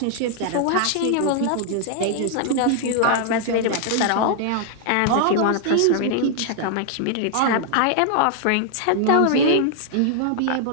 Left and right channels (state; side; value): different; both; correlation 0.00